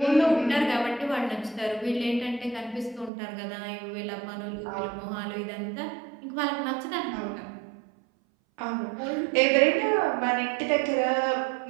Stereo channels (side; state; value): left; drops out; at 3.1 s